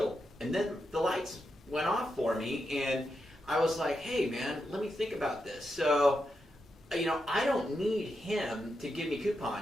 And then the lights went off for me, and I was like, hey, man, let me think about this. So, I don't need him to give me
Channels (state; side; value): normal; both; correlation 0.85